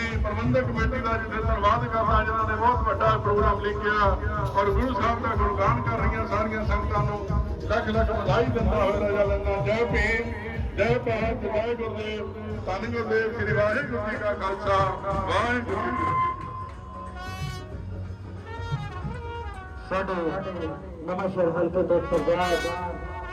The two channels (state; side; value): identical; both; correlation 1.00